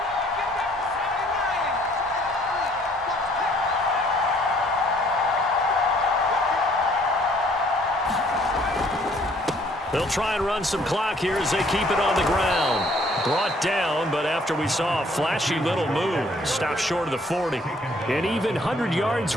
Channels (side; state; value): both; normal; correlation 0.61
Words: They'll try and run some clock here as they keep it on the ground. Brought down, but after we saw a flashy little move, stopped short of the 40. And even 100 yards